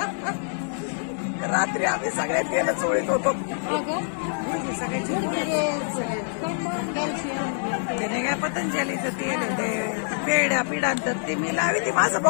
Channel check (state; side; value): silent; right; digital silence